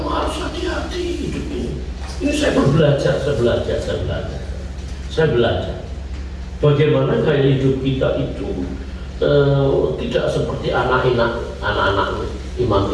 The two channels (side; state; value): both; identical; correlation 1.00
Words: harus hati-hati hidup ini. Ini saya belajar. Bagaimana gaya hidup kita itu tidak seperti anak-anak Imam